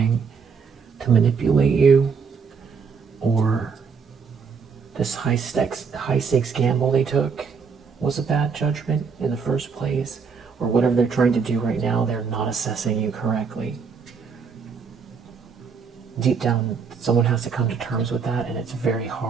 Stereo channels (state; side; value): quieter; left; 5.7 dB